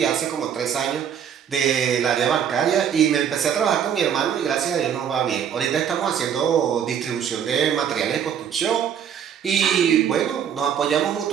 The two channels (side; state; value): left; quieter; 8.5 dB